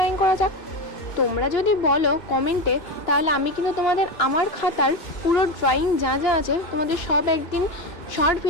করা যাক। তোমরা যদি বলো কমেন্টে, তাহলে আমি কিন্তু তোমাদের আমার খাতার পুরো ড্রয়িং যা যা আছে তোমাদের সব একদিন শর্ট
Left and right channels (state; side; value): late; right; 2.8 ms